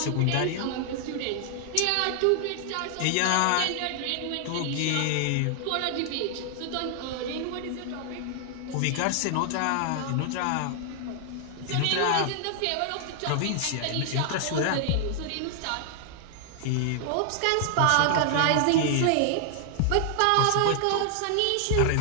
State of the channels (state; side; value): different; both; correlation 0.00